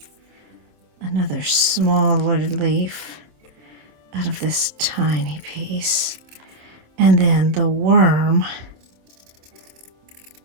another smaller leaf out of this tiny piece, and then the worm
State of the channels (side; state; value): left; late; 27 ms